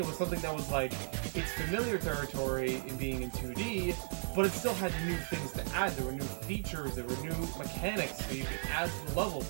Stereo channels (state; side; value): silent; left; digital silence